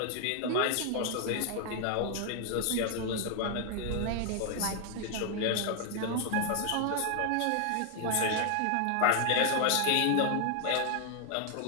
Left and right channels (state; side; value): different; both; correlation 0.00